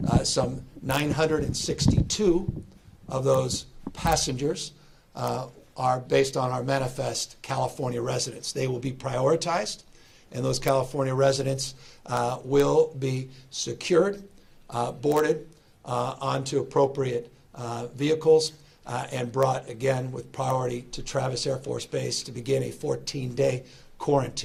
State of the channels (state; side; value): identical; both; correlation 1.00